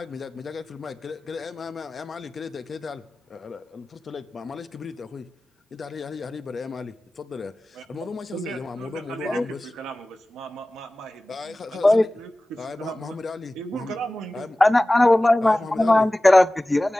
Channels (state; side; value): normal; both; correlation 0.97